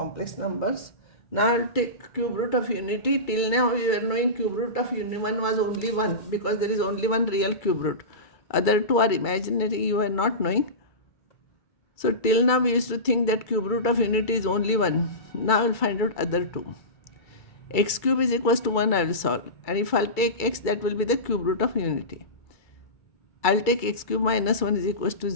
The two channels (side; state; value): right; late; 2.3 ms